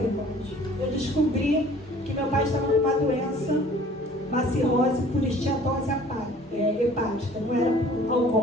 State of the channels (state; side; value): normal; both; correlation 0.51